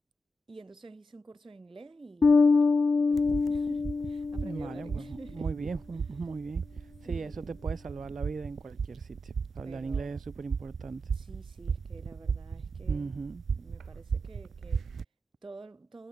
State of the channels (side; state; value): both; normal; correlation 0.89